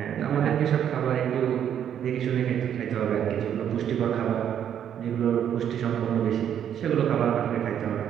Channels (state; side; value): quieter; left; 9.4 dB